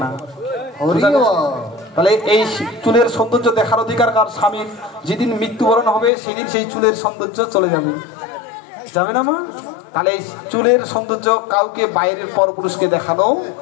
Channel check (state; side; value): drops out; right; at 6.1 s